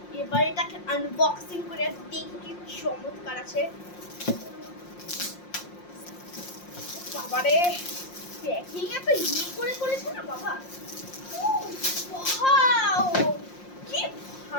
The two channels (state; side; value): late; right; 5.6 ms